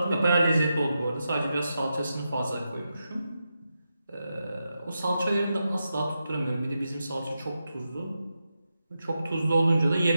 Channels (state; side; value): inverted; both; correlation -0.88